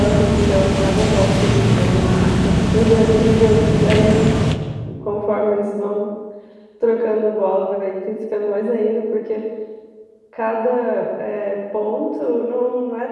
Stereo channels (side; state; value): both; identical; correlation 1.00